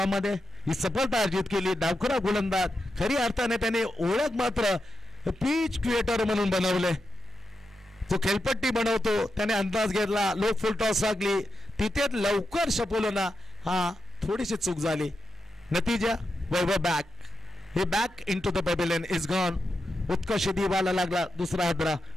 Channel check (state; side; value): normal; both; correlation 0.88